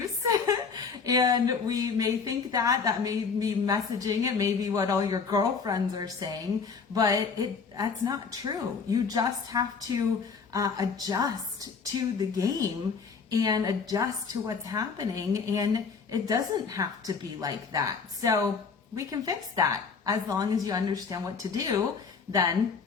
And we may think that may be messaging. It may be what all your girlfriends are saying, but that's not true. You just have to adjust to the game and adjust to what's happening. And it doesn't have to be like that. So we can fix that. As long as you understand what to do, then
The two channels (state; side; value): quieter; right; 5.4 dB